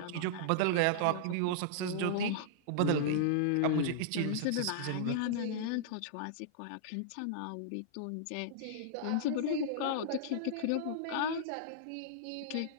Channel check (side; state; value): both; different; correlation -0.02